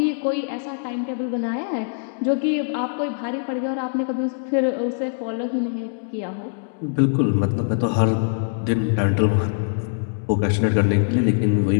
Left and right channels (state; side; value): silent; right; 64 dB below the other